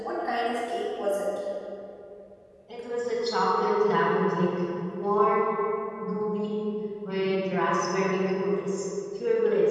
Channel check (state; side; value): identical; both; correlation 1.00